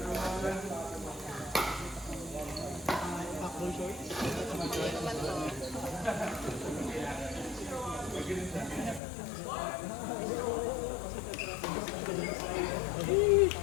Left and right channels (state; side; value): drops out; right; at 9.0 s